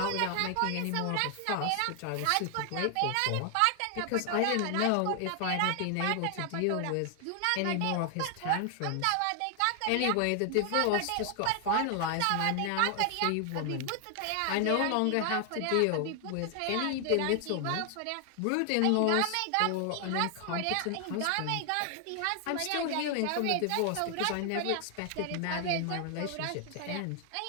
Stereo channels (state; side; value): different; both; correlation 0.00